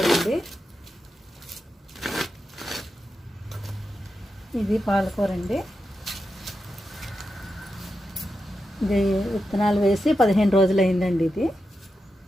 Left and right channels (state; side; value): normal; both; correlation 0.88